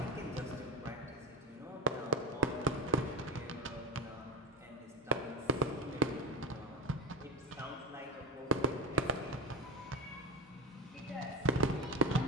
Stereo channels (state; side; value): normal; both; correlation 0.17